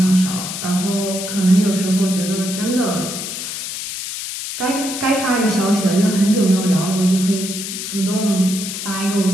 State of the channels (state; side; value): noise; left; hiss, 6 dB below the sound